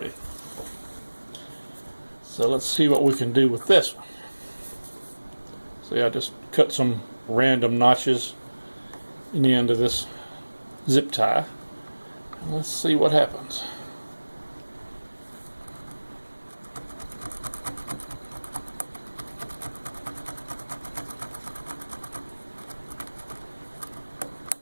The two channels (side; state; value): both; inverted; correlation -1.00